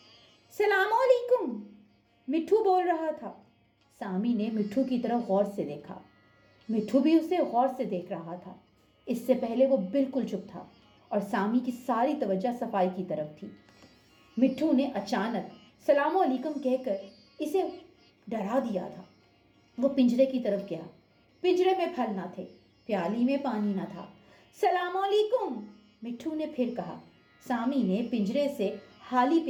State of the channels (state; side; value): identical; both; correlation 1.00